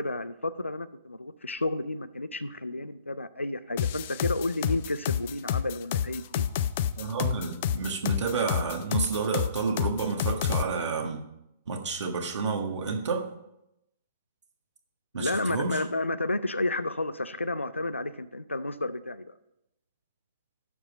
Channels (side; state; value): both; inverted; correlation -0.59